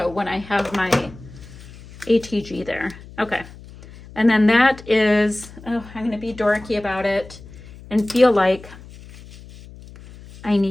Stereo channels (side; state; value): left; noise; hum, 18 dB below the sound